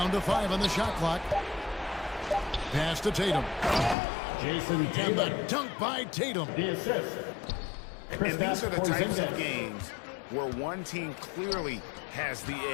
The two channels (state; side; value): drops out; right; at 4.0 s